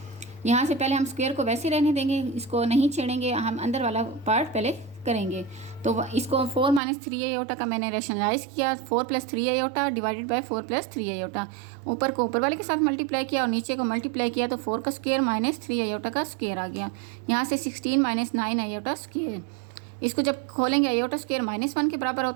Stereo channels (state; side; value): drops out; left; at 6.8 s